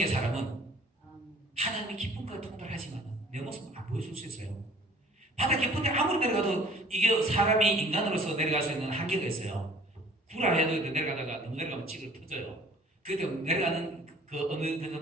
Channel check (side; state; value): both; normal; correlation 0.52